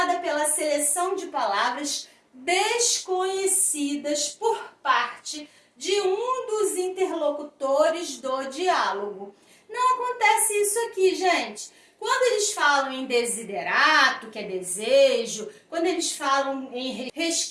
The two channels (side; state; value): both; identical; correlation 1.00